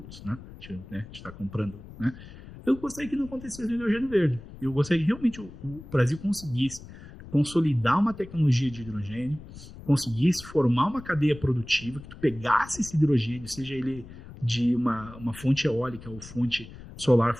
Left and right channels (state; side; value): noise; left; rumble, 16 dB below the sound